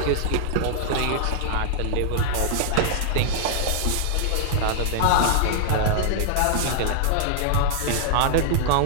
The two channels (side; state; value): both; different; correlation -0.01